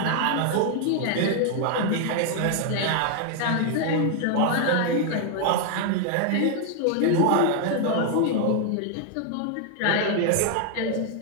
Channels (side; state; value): both; different; correlation 0.00